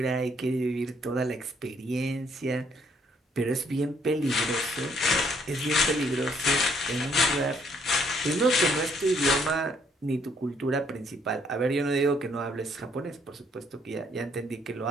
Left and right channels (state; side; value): normal; both; correlation 0.67